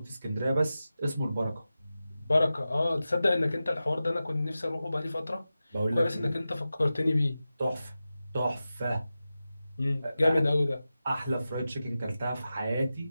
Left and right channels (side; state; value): both; inverted; correlation -0.93